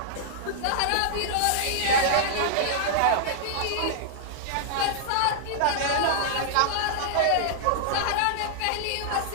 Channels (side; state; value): both; different; correlation -0.01